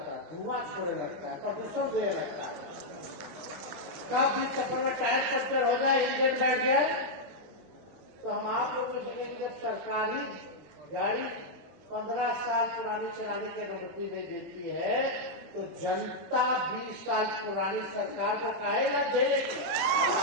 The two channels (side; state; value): left; late; 20 ms